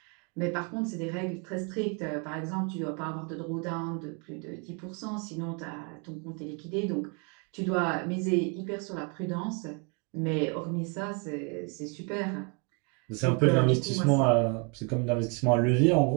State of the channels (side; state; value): left; quieter; 33.7 dB